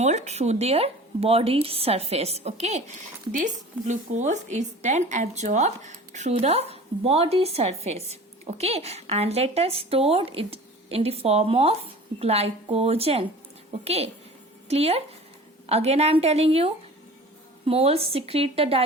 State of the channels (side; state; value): both; normal; correlation 0.41